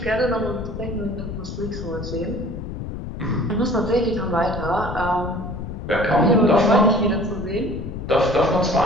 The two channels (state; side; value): noise; left; rumble, 7 dB below the sound